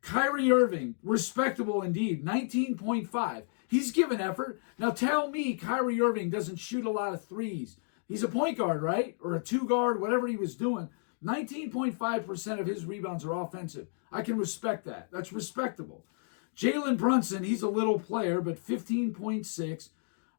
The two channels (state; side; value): silent; right; digital silence